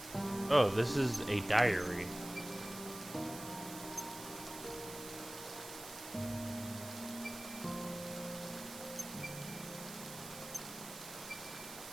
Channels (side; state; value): right; noise; hiss, 11 dB below the sound